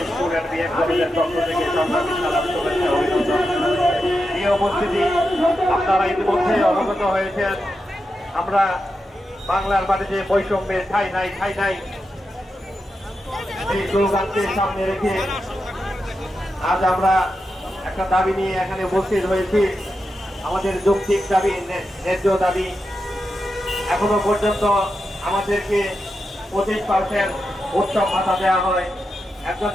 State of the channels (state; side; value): normal; both; correlation 0.88